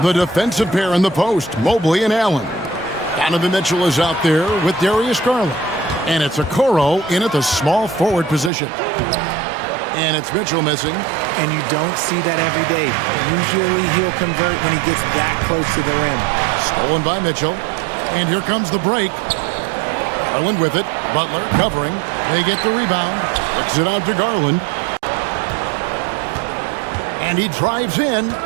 The defensive pair in the post, Mobley and Allen. Donovan Mitchell is out there with Darius Garland. And it's Okoro in at the small forward position. And it's Mitchell missing. And you don't see that every day. Usually he'll convert when he gets that close to the rim. Stolen by Mitchell. And here comes the break. Garland with it. Butler covering. They get the rebound. Kicks it out to Garland. And he drives in.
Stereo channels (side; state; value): left; drops out; at 8.5 s